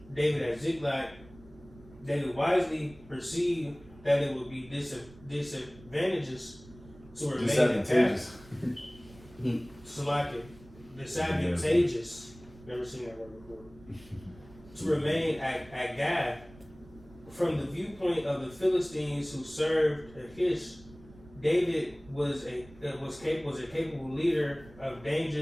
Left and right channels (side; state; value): right; noise; rumble, 22 dB below the sound